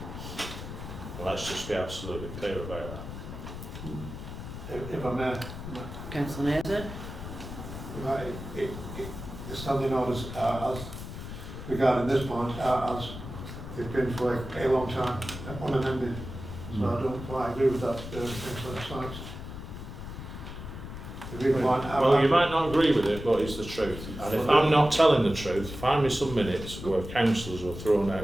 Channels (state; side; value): noise; left; rumble, 10 dB below the sound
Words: And let's just be absolutely clear about that. If I may, Councillor Naser? right, the standing orders as regarding this point as they've been for a long time, unamended. So I don't quite agree with that, Councillor Sykes. The reason why Well, you might not agree with it, but it's the truth. And if I'm not telling the truth, find me some minutes where councillors were thrown out